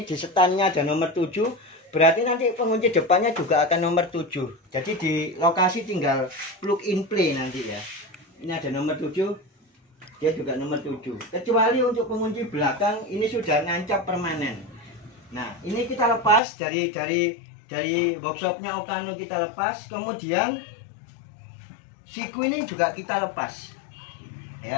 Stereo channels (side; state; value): right; drops out; at 16.4 s